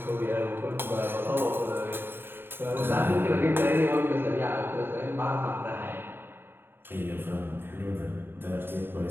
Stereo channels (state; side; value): late; left; 0.10 ms